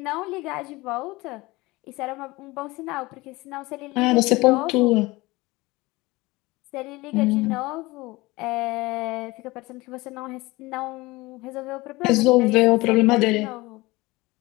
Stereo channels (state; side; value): quieter; right; 21.6 dB